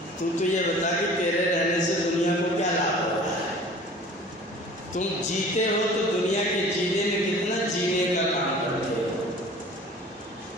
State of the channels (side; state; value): both; normal; correlation 0.45